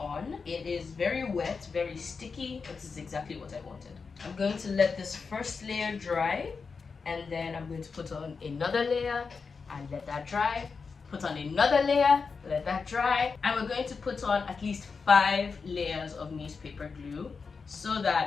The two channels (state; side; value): quieter; right; 5.0 dB